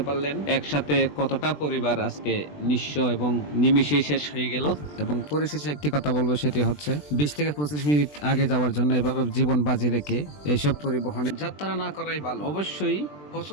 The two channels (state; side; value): late; right; 20 ms